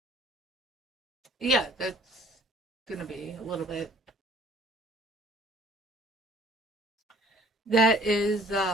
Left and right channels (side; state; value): both; normal; correlation 0.54